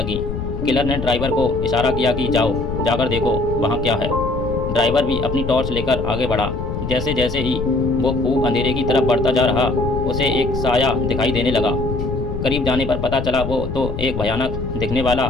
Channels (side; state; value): left; noise; rumble, 5 dB below the sound